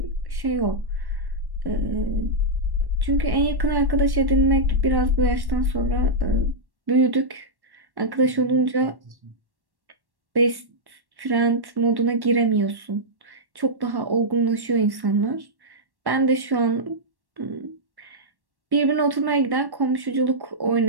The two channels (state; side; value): late; left; 1.1 ms